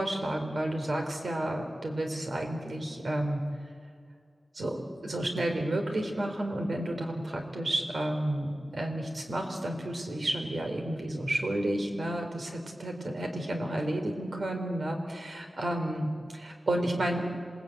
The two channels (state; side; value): normal; both; correlation 0.93